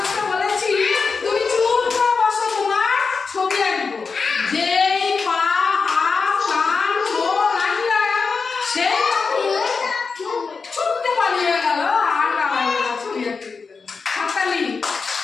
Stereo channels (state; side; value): quieter; right; 4.9 dB